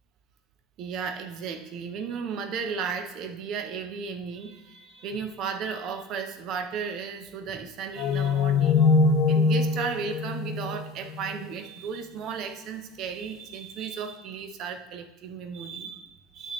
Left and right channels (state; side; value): normal; both; correlation 0.36